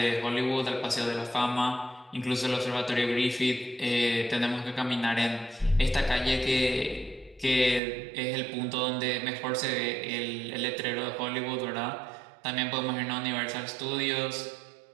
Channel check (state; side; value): drops out; left; at 7.8 s